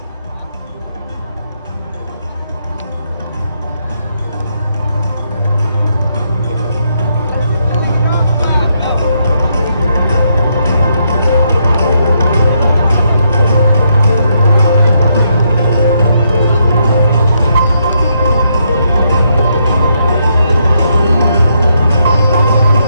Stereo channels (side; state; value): both; inverted; correlation -0.77